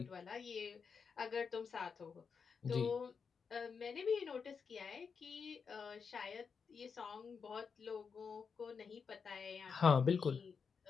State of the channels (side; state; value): right; quieter; 5.8 dB